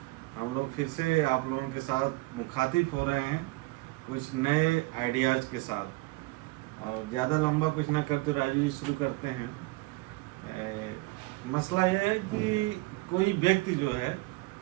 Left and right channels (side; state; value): left; quieter; 22.8 dB